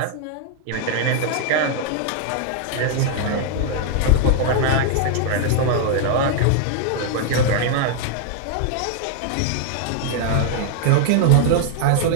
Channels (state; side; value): different; both; correlation 0.00